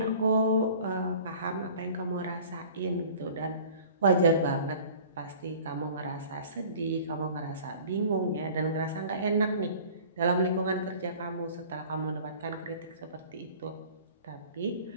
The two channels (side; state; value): both; inverted; correlation -0.46